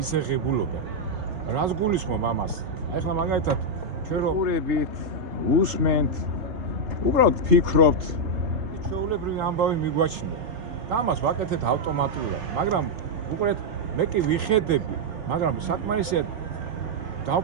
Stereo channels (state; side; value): late; left; 3.9 ms